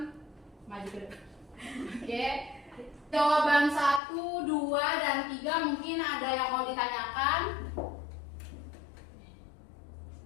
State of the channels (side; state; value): right; drops out; at 4.0 s